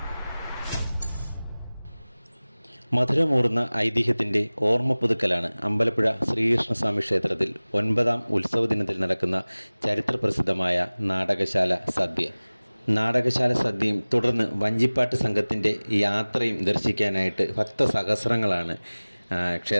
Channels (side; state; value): both; inverted; correlation -1.00